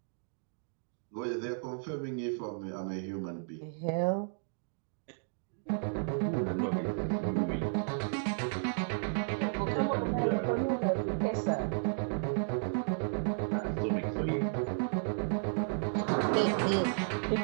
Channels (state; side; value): silent; left; digital silence